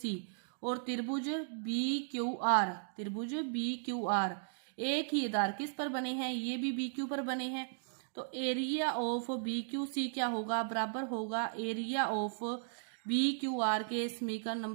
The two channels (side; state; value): left; silent; digital silence